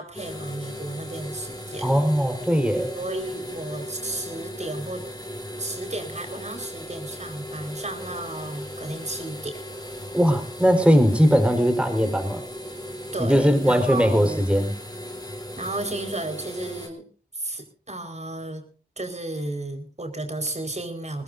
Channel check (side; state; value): both; normal; correlation 0.87